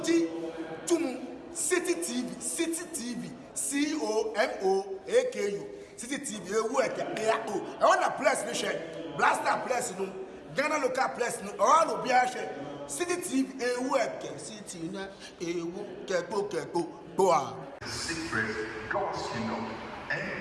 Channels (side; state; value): both; identical; correlation 1.00